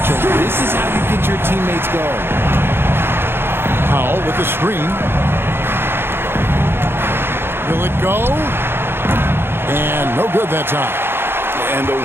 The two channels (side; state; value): left; late; 0.11 ms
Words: This is how you get your teammates going. Powell with the screen. Will it go? And no good that time. And the